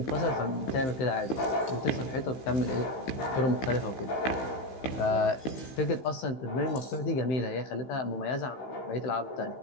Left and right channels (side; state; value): right; late; 15 ms